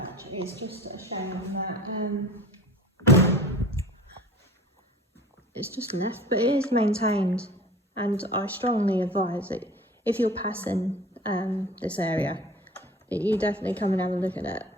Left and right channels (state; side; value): normal; both; correlation 0.42